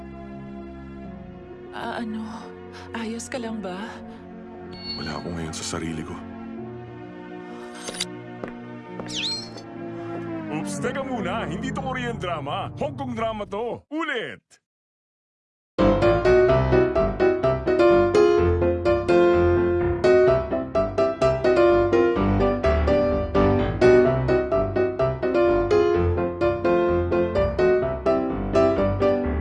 Ayos ka lang ba? Wala ako ngayon sa sarili ko. Oops, teka muna. Hindi to Korean drama. Hong Kong drama to. Ulit!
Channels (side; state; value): both; identical; correlation 1.00